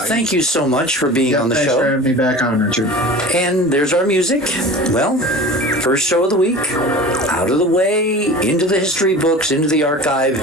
thank you so much for being on the show. Thanks for having me back on, Richard. And there's our music. Well, first show of the week, out of the way, into the history books, into the archive.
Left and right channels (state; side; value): normal; both; correlation 0.37